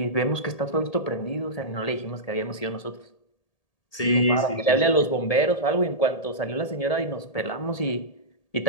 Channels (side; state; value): right; late; 1.8 ms